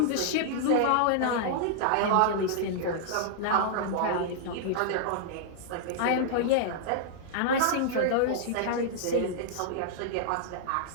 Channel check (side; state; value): both; different; correlation -0.01